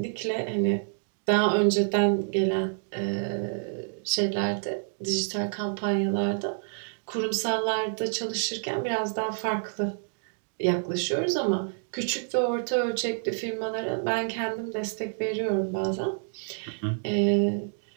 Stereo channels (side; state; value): left; silent; digital silence